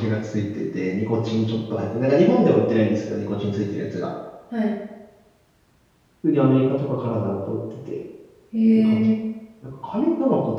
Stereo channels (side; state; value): both; identical; correlation 1.00